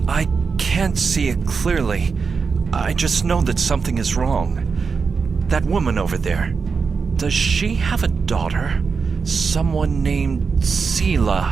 I can't see it clearly. I just know that something is wrong. That woman over there. Does she have a daughter? Someone named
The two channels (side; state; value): left; quieter; 5.2 dB